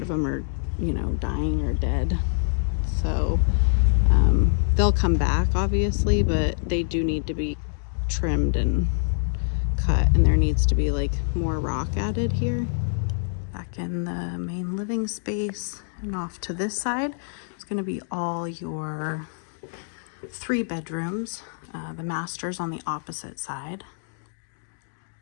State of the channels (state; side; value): silent; right; digital silence